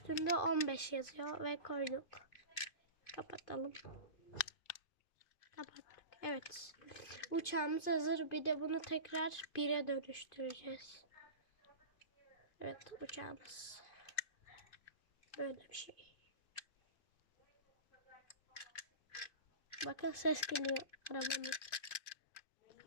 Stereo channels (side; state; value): right; late; 2.5 ms